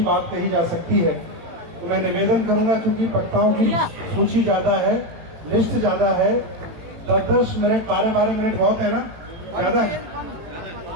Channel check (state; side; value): late; left; 18 ms